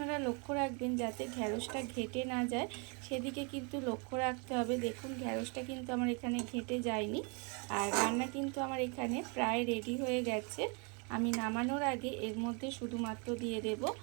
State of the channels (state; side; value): quieter; left; 34.5 dB